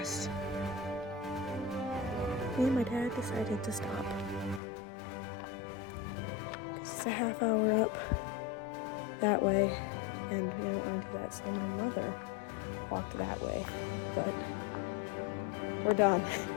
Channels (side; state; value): right; drops out; at 4.6 s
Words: Me and my dad decided to stop. It's a half hour up that way, and we don't want to do that, so my mother walked that way, but we're done.